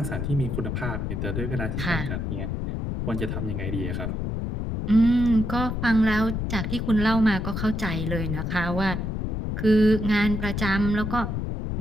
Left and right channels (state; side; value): noise; left; rumble, 3 dB below the sound